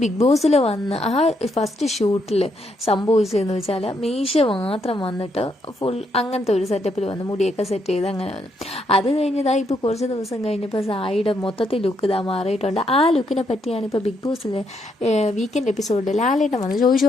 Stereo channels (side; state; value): both; normal; correlation 0.76